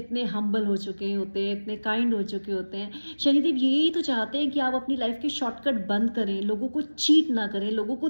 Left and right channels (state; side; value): inverted; both; correlation -1.00